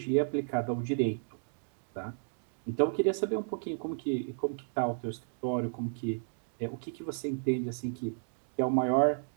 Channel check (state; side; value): silent; left; digital silence